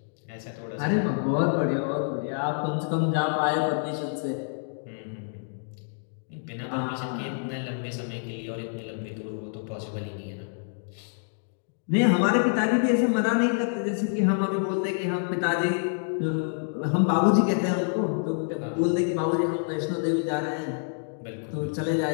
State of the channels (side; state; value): right; silent; digital silence